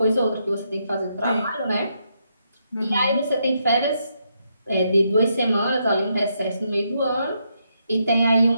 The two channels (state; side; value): inverted; both; correlation -0.79